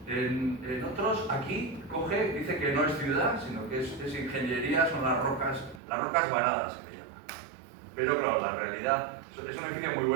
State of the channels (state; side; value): drops out; left; at 5.8 s